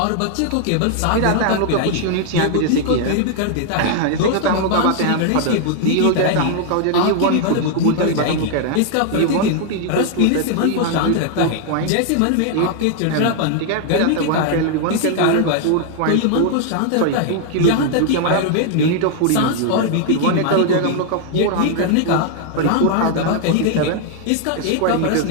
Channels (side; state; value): both; different; correlation 0.00